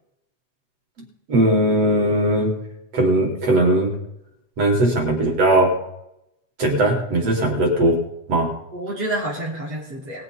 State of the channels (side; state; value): left; late; 8.0 ms